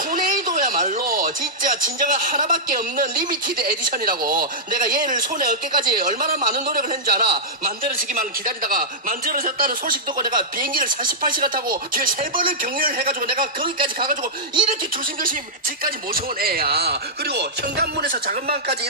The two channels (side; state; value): both; normal; correlation -0.10